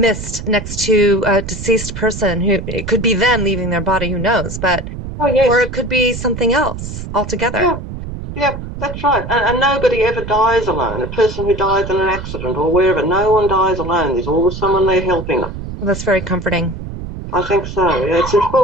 next to a deceased person who it could be them leaving their body, who knows, but Oh, or yes. it could be something else altogether. Yeah, yeah, that's right. And nobody ever dies alone. A person who dies in an accident or wherever, no one dies alone. There's always someone there helping them. Well, that's very comforting. I think so. Yeah, it's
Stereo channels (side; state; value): right; noise; rumble, 8 dB below the sound